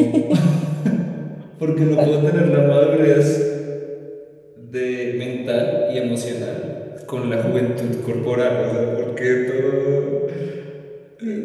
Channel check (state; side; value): identical; both; correlation 1.00